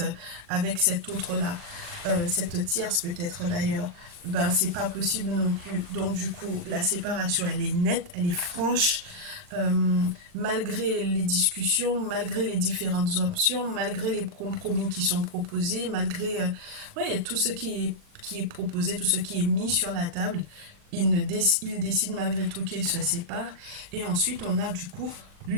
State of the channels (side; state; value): left; late; 40 ms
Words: avec cette autre-là, cette tierce peut-être d'ailleurs, ben c'est pas possible non plus. Donc du coup, la séparation, elle est nette, elle est franche, euh, malgré les discussions, malgré les différentes options, malgré les compromis qui sont proposés, malgré ouais, tout ce qui est proposé, tout ce qui est mis sur la table, il décide malgré tout qu'il se sépare. Et ensuite, on a du coup